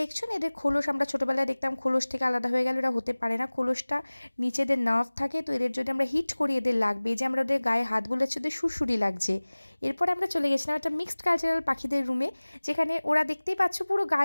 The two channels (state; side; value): inverted; both; correlation -1.00